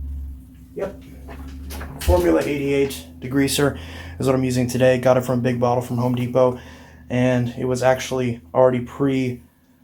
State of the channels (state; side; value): identical; both; correlation 1.00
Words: Yep. Formula 88 degreaser is what I'm using today. Got it from Big Bottle from Home Depot, and it was actually already pre-measured.